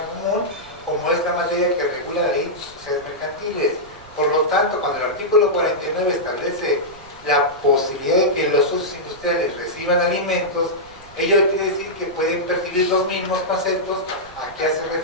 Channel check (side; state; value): right; noise; rumble, 22 dB below the sound